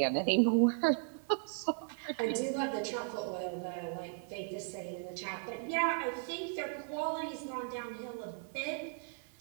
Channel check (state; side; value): silent; left; 54 dB below the other